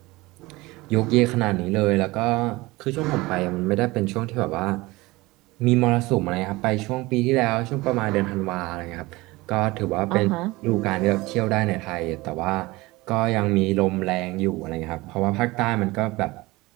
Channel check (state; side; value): quieter; left; 21.2 dB